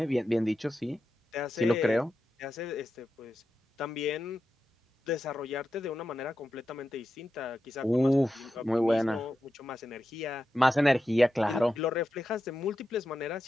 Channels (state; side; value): normal; both; correlation 0.90